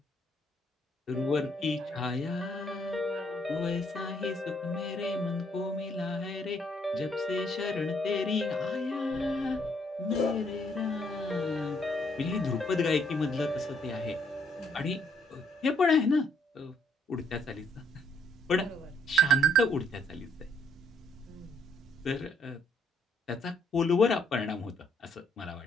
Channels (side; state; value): both; normal; correlation 0.69